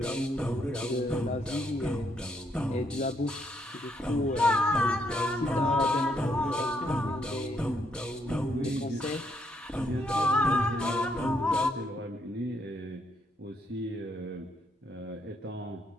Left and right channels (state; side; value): normal; both; correlation 0.74